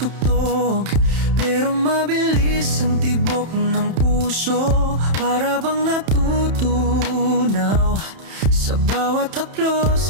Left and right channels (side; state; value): left; late; 31 ms